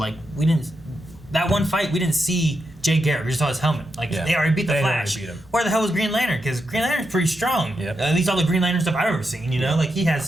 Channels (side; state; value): both; normal; correlation 0.85